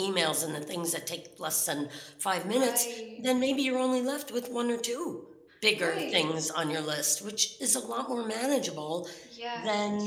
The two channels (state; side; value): identical; both; correlation 1.00